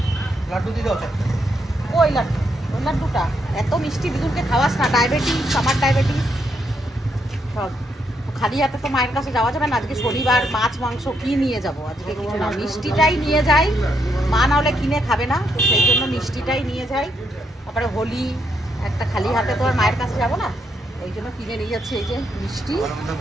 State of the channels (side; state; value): both; normal; correlation 0.78